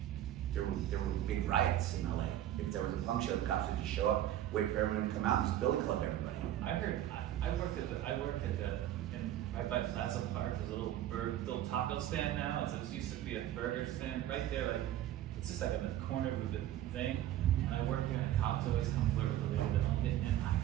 There were big riots in LA. If there was a punk show, the cops would just show up, wait for everyone to come out, and just billy club everybody. I worked at right by Plaza Park. There's a little taco stand now. It used to be a burger stand right there. Like it's just like on the corner of the thing. And I worked there, and the cops always come flirt with the lady that owned it. And I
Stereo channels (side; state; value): left; quieter; 12.5 dB